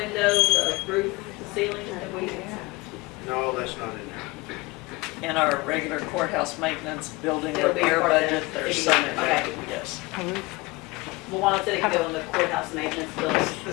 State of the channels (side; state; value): right; quieter; 23.1 dB